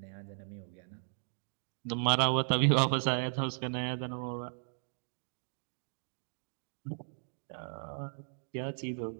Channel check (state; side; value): silent; left; digital silence